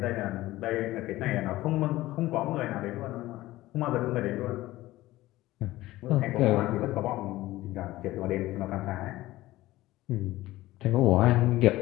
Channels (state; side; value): quieter; right; 17.0 dB